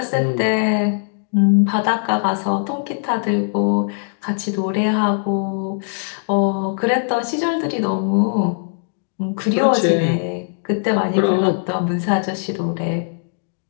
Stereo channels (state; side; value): silent; right; digital silence